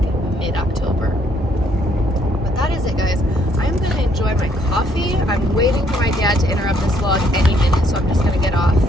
mid-October. But that is it, guys. I'm going to enjoy my coffee. I'm waiting for my dad to interrupt this vlog any minute, so I'm just going to get off.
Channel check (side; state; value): both; normal; correlation 0.68